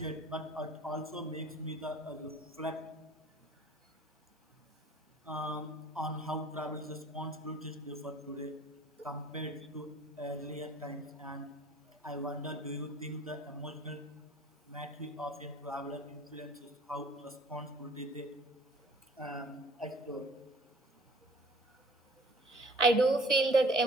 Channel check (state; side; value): normal; both; correlation 0.51